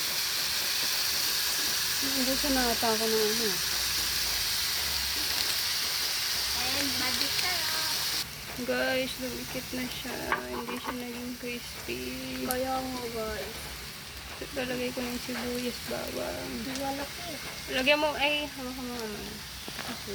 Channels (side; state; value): both; identical; correlation 1.00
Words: Hindi siya nakata ako ng ano. And magic sarap. Guys, lumikit na siya. Hindi siya naging crispy. Kaya mo guys. Lalagay ko ng sibuyas bawang. Wala ko. Lagyan mo, ay, hawakan mo naman.